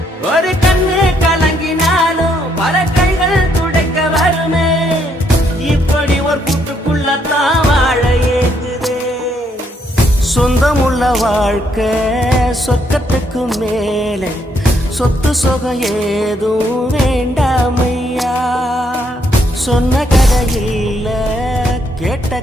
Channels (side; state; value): both; normal; correlation 0.72